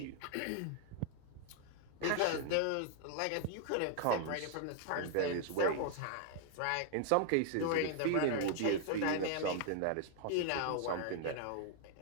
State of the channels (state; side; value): different; both; correlation 0.00